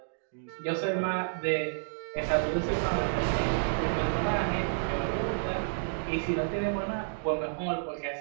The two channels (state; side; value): silent; left; digital silence